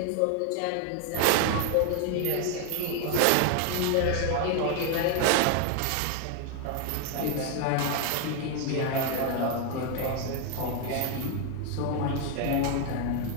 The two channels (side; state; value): both; different; correlation 0.01